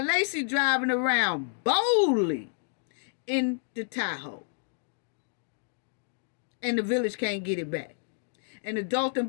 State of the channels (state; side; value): silent; right; digital silence